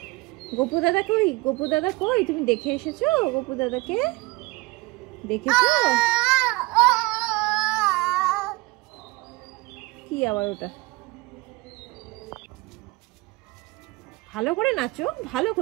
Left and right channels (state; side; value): quieter; left; 23.2 dB